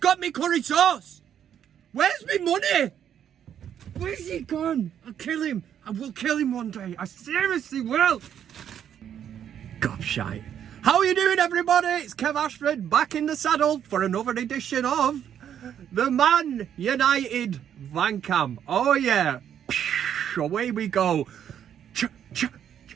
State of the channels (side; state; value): left; quieter; 9.4 dB